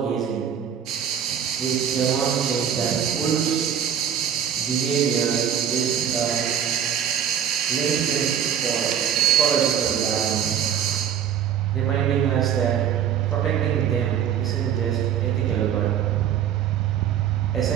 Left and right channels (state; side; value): quieter; left; 9.0 dB